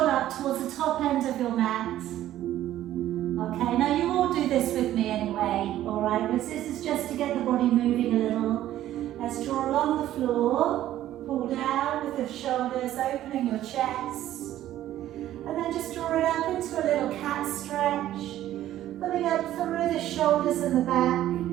up towards the top end of your mat. Okay, now you all do this with me anyway, alright? This is just to get the body moving a little. Let's draw along the floor, pull down with the shoulders, opening your chest. And then just draw it up into a little cat stretch, pulling up through the shoulders and the back.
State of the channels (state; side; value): quieter; left; 13.1 dB